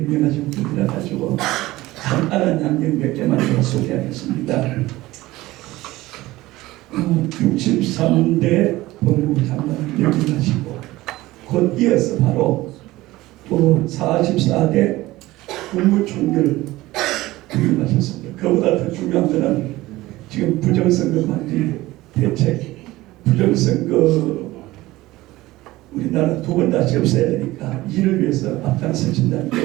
분이라 가지고 간단한 양념 몇 개만 더 소개하겠습니다. 63대 법무장관을 역임하시고 곧 이어서 바로 또 44대 국무총리를 역임하셨습니다. 그보다 더 중요한 것은 지금 부정선거 방지 대책, 부정선거 우리나라 두 번 다시 없애야 되니까 이를 위해서 앞장서신다는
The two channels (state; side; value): quieter; left; 18.1 dB